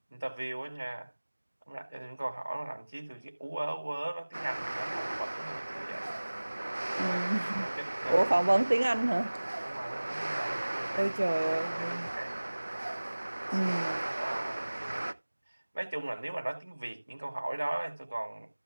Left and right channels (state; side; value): inverted; both; correlation -1.00